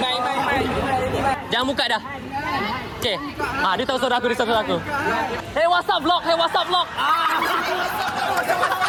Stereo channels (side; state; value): both; identical; correlation 1.00